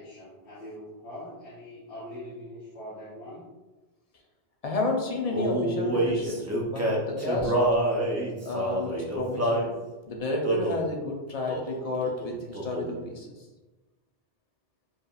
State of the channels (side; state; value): both; normal; correlation 0.01